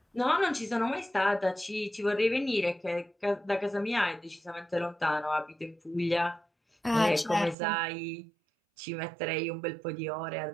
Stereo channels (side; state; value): left; drops out; at 7.6 s